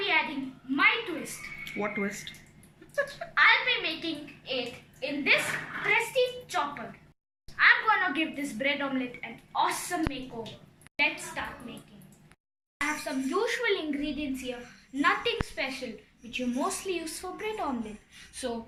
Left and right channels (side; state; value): both; identical; correlation 1.00